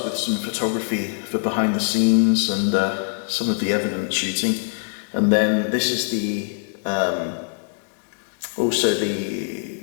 with some photography for behind the scenes and some of the evidence shooting, and then this is the also the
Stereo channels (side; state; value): right; silent; digital silence